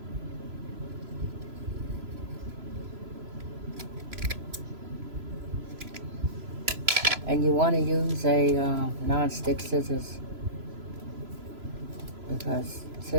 And you want to use a non-stick scissors, because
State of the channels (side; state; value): left; late; 3.0 ms